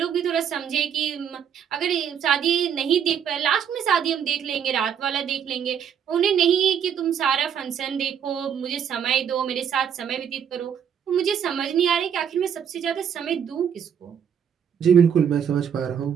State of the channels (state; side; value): quieter; left; 8.2 dB